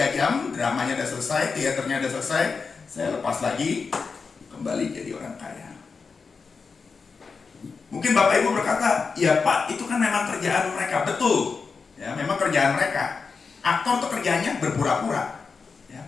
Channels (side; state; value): right; quieter; 5.0 dB